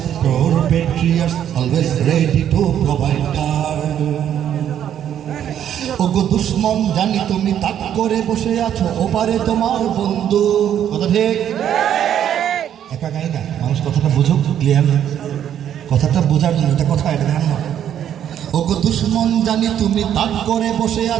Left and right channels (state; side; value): quieter; left; 10.0 dB